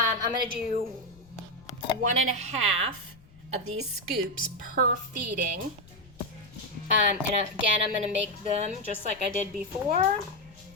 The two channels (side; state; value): left; noise; rumble, 24 dB below the sound